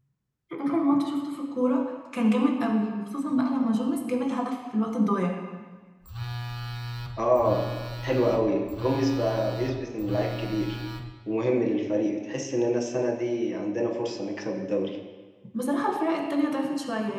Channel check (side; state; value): both; identical; correlation 1.00